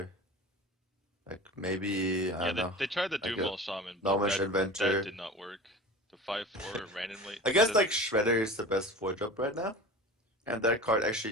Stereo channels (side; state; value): both; normal; correlation 0.35